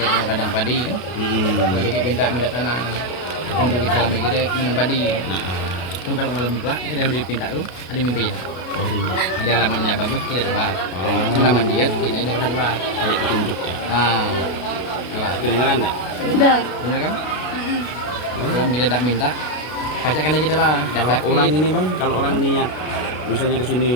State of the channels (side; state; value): right; late; 32 ms